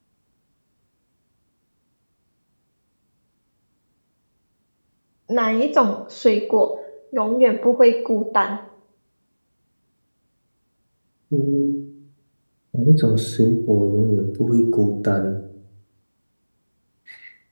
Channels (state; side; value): inverted; both; correlation -1.00